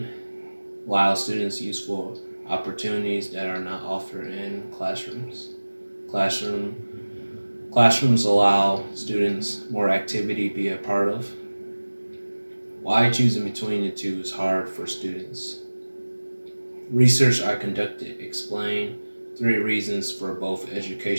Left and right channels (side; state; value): both; inverted; correlation -1.00